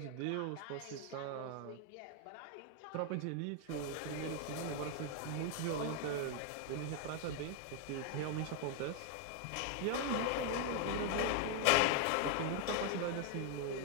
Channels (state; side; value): different; both; correlation 0.00